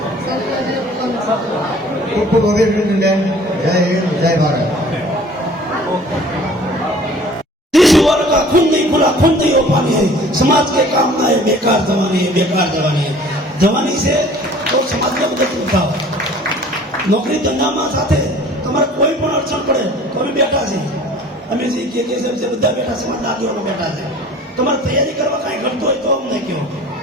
ખૂબ ખૂબ અભિનંદન બેન। જય હિન્દ, જય ભારત। जिस वर्ग का खून नहीं खुला खून नहीं हो पानी है, समाज के काम ना है बेकार जवानी है, बेकार जवानी है। जवानी से तो समाज में मदद करता हो। नौकरी धंधाમાં સાથે તમારે કોઈ પણ અડચણ પડે તો અમે બેઠા છીએ, અમે જે કે છે બધા બેઠા સમાજના આગેવાનો બેઠા છે। તમારે તૈયારી કરવા કાંઈ ઘટતું હોય તો અમને કહો,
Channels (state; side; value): normal; both; correlation 0.49